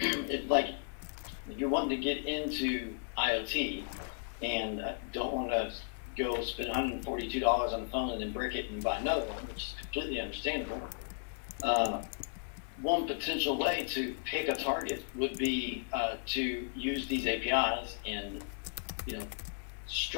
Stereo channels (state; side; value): silent; right; digital silence